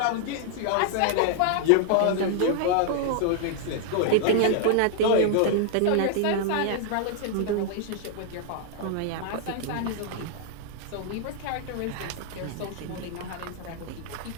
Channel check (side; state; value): both; different; correlation -0.01